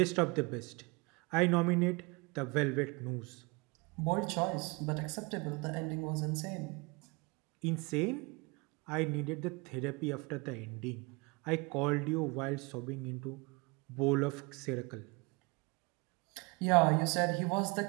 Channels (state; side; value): quieter; left; 27.6 dB